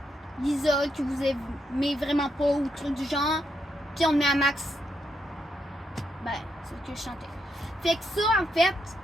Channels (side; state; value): both; normal; correlation 0.80